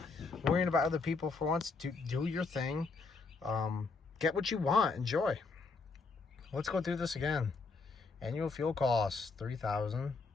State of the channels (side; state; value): right; quieter; 4.2 dB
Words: worrying about other people for once. Do your thing. Get what you want. Enjoy. Let's go through this again. Annual fuel costs